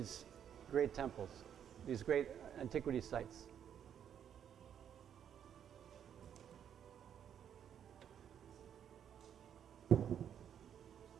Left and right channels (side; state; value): left; quieter; 9.0 dB